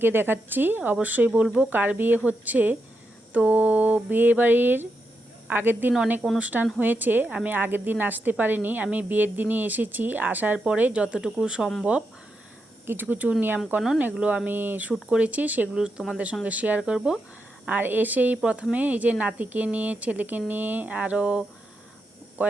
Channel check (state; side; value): normal; both; correlation 0.85